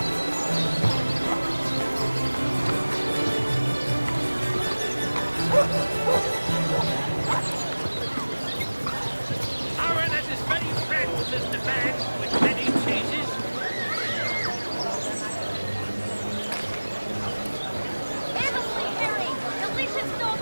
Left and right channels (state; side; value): inverted; both; correlation -1.00